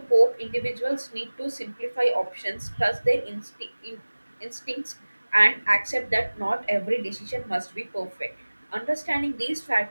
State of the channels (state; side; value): inverted; both; correlation -1.00